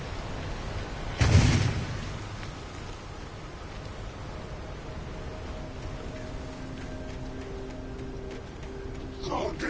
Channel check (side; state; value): both; identical; correlation 1.00